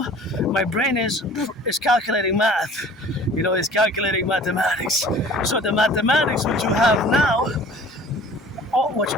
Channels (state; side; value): normal; both; correlation 0.47